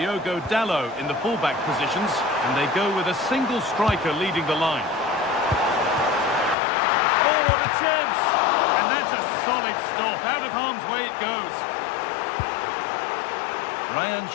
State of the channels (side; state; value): right; drops out; at 6.6 s